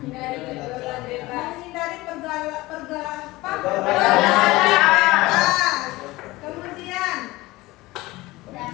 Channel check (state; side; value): quieter; right; 19.9 dB